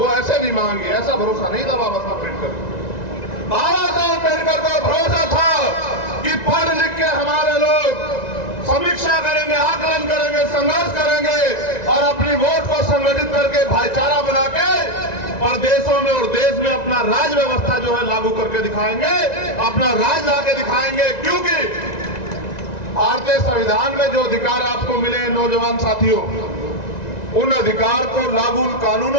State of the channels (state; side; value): late; right; 1.9 ms